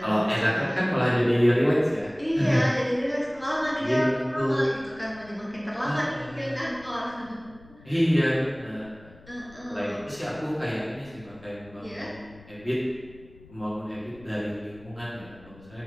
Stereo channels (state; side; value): noise; left; rumble, 22 dB below the sound